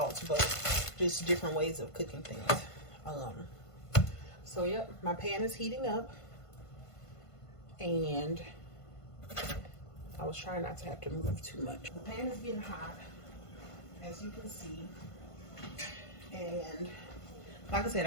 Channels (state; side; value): late; right; 1.5 ms